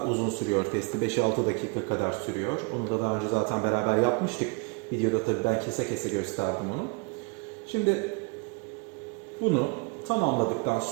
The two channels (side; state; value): left; quieter; 32.3 dB